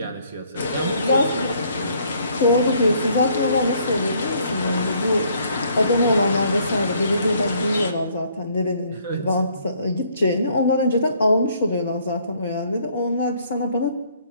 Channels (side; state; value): both; inverted; correlation -0.64